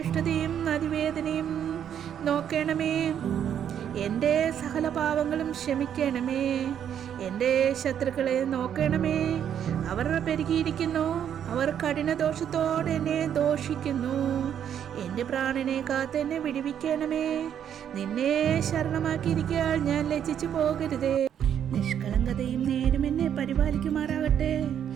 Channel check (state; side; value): quieter; left; 9.2 dB